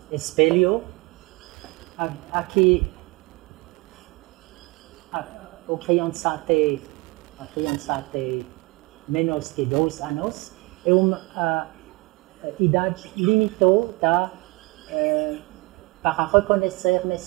espelho, aqui a criança tem menos de 2 anos, é uma idade limitada para reconhecer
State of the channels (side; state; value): left; quieter; 24.4 dB